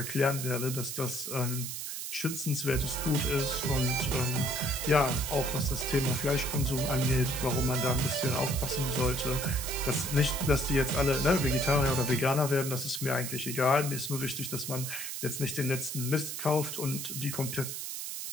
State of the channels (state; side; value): noise; right; hiss, 6 dB below the sound